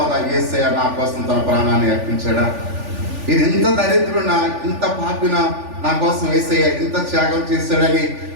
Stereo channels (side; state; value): left; late; 3.4 ms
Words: యేసయ్య నా కోసం తన ప్రాణాన్ని అర్పించాడా, ఇది ఇంత దరిద్రునా ఇంత పాపినా నా కోసం యేసయ్య ఇంత త్యాగం చేశాడని